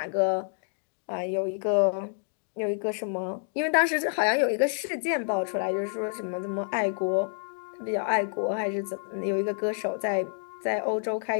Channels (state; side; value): silent; right; 59 dB below the other